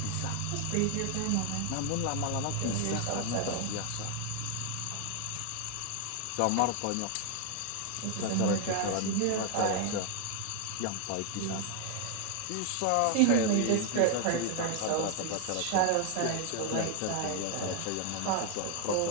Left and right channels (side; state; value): both; different; correlation 0.00